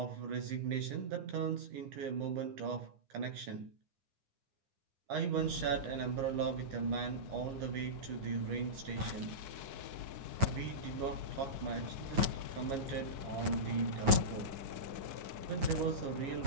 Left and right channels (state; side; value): late; left; 9.5 ms